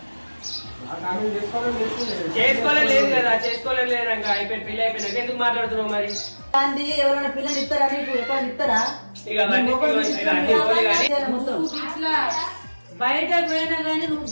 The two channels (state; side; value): inverted; both; correlation -1.00